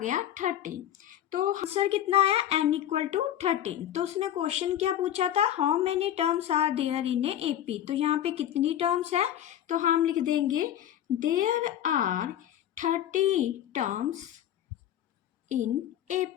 13। तो आंसर कितना आया, n इक्वल टू 13। तो उसने क्वेश्चन क्या पूछा था, how many terms are there in a AP। तो यहाँ पे कितनी टर्म्स है, तो हम लिख देंगे there are 30 terms in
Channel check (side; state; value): right; quieter; 11.2 dB